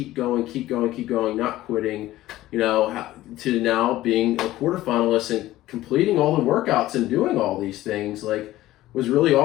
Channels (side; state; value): right; quieter; 15.7 dB